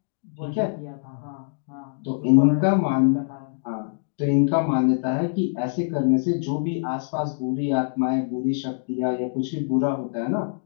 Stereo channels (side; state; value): right; silent; digital silence